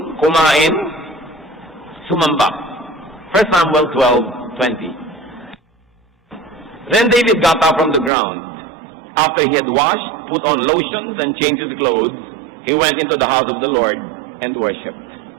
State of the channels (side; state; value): left; drops out; at 8.1 s